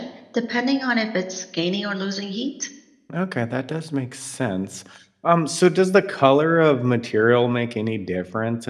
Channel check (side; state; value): both; identical; correlation 1.00